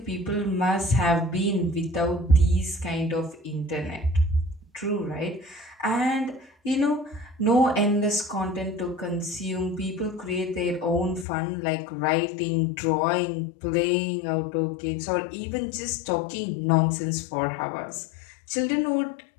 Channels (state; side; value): drops out; right; at 11.2 s